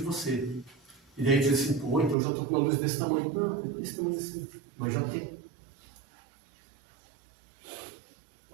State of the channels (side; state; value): left; drops out; at 2.1 s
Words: E daí diz assim, pô, então eu já estou com uma luz desse tamanho. Não, desse tamanho assim, mas já tem.